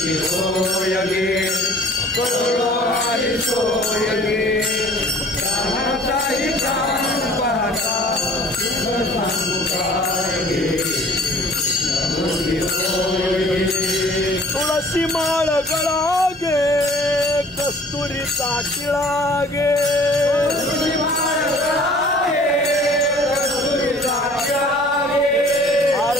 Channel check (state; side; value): normal; both; correlation 0.51